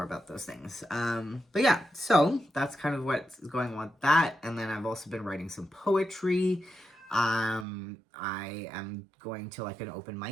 about those things. But yeah, so that's kind of what's going on with that. And then I've also been writing some poetry. I am going to like an open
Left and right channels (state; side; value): drops out; left; at 7.7 s